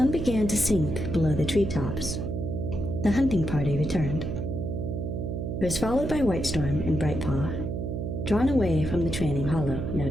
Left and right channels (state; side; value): noise; right; hum, 3 dB below the sound